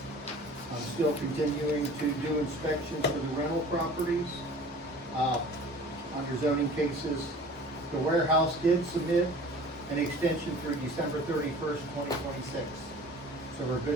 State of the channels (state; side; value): normal; both; correlation 0.44